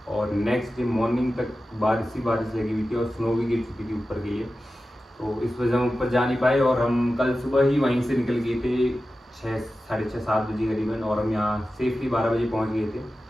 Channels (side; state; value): both; normal; correlation 0.94